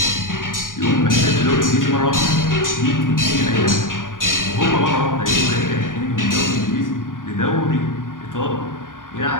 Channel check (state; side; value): late; right; 0.89 ms